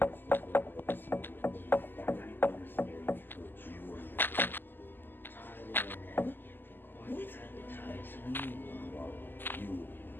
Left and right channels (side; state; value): right; late; 0.093 ms